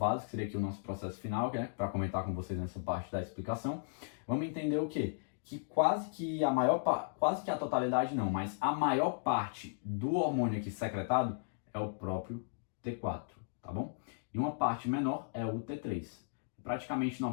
que seria aqui o nosso processo final, né, para comentar com vocês nessa parte da explicação. Vamos entender o quê? Que quase que a totalidade não, mas a maior parte do hormônio aqui secretado é o próprio T4, tá bom? E uma parte menor é o T3. Praticamente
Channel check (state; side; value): silent; right; digital silence